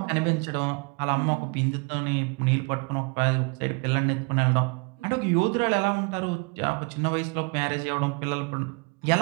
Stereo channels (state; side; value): quieter; left; 31.8 dB